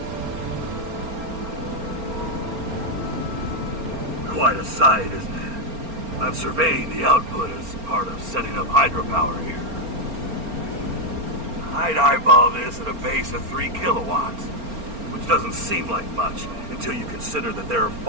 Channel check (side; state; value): left; late; 4.3 ms